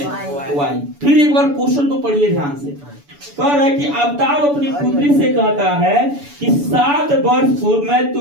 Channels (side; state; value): left; late; 7.0 ms